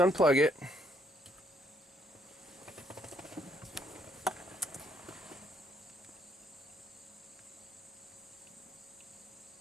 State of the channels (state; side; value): normal; both; correlation 0.70